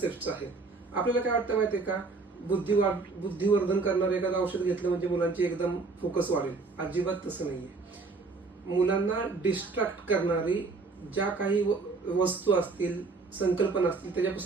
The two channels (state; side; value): quieter; left; 4.0 dB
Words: आहेत. आपल्याला काय वाटतं माहितीये का, बुद्धिवर्धन करणारं एखादं औषध घेतलं म्हणजे मुलांची एकदम फोकस वाढेल. अजिबात तसं नाहीये. मुलांना डिस्ट्रॅक्ट करणारी ज्या काही वस्तू असतील, संकल्पना असतील,